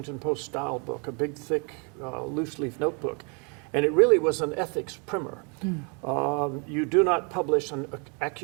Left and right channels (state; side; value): quieter; left; 35.1 dB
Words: Post style book, a big, thick, loose-leaf notebook, and it really was an ethics primer. You do not publish an